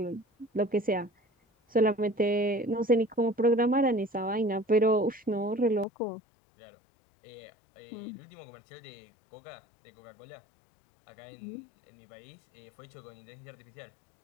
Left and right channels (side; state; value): right; drops out; at 5.9 s